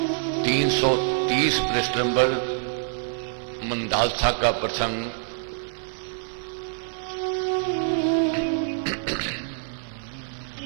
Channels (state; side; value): silent; left; 61 dB below the other